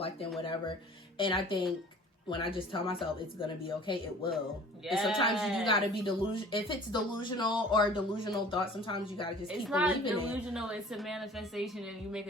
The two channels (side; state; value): both; normal; correlation 0.47